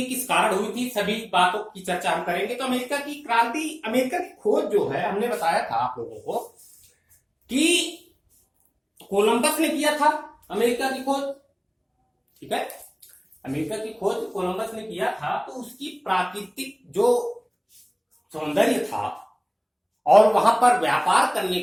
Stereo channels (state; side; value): identical; both; correlation 1.00